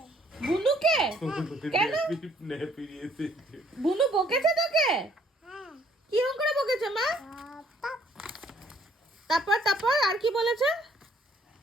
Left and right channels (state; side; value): normal; both; correlation 0.63